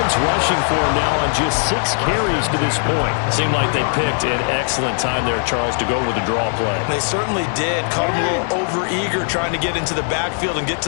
rushing for him now on just 6 carries to this point. Seemed like they picked an excellent time there, Charles, to go with the draw play. They certainly did. Caught him a little over-eager trying to get into the backfield and get to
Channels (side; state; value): right; silent; 62 dB below the other